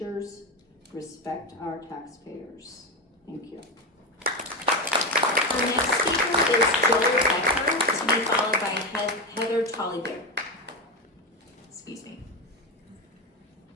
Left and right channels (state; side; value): normal; both; correlation 0.16